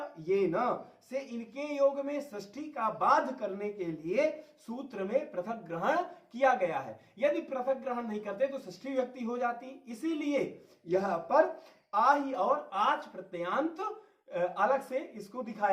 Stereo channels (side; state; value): both; identical; correlation 1.00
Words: से इनके योग में षष्ठी का बाध करने के लिए सूत्र में पृथक ग्रहण किया गया है। यदि पृथक ग्रहण नहीं करते तो षष्ठी विभक्ति हो जाती, इसीलिए यहां पर आहि और आच प्रत्ययांत अलग से इसको